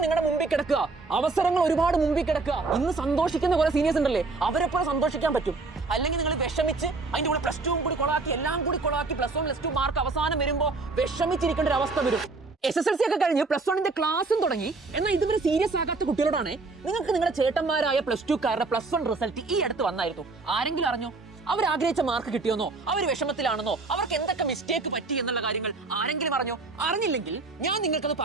നിങ്ങളുടെ മുമ്പിൽ കിടക്കുക. അവസരങ്ങൾ ഒരുപാട് മുമ്പിൽ കിടക്കുക. ഇന്ന് സന്തോഷിക്കുന്ന കുറെ സീനിയേഴ്സ് ഉണ്ടല്ലേ, അവരെപ്പോലെ സന്തോഷിക്കാൻ പറ്റും. അല്ലെങ്കിൽ നിങ്ങൾ വിഷമിച്ച് അതിന്റെ കൂടെ പ്ലസ് 2 കൂടി കൊളാക്കി, എല്ലാം കൂടി കൊളാക്കി, പ്ലസ് 1 പ്ലസ് 2 മാർക്ക് അവസാനം വരുമ്പോൾ വിഷമിച്ചിരിക്കേണ്ട ഒരു അവസ്ഥ വരും. SSLC ഒക്കെ കഴിഞ്ഞ് പ്ലസ് 1ന്റെ ക്ലാസ്സും തുടങ്ങി. എന്നാൽ ഇതുവരെ സീരിയസ് ആകാത്ത കുട്ടികളോടാണ് നിങ്ങൾക്ക് നിങ്ങളുടെ ചേട്ടന്മാരായ പ്ലസ് 2കാരുടെ പ്ലസ് 1 റിസൾട്ട് ഈ അടുത്ത് വന്നായിരുന്നു. ആരെങ്കിലും അറിഞ്ഞോ? അവർ ആഗ്രഹിച്ച മാർക്ക് കിട്ടിയോന്നോ, അവർ വിഷമത്തിലാണെന്നോ, അവർക്ക് എന്തൊക്കെ മിസ്റ്റേക്ക് പറ്റി എന്നുള്ള കാര്യങ്ങൾ ആരെങ്കിലും അറിഞ്ഞോ? അറിഞ്ഞില്ലെങ്കിൽ ഞാൻ നിങ്ങൾക്കത്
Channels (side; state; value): left; quieter; 3.7 dB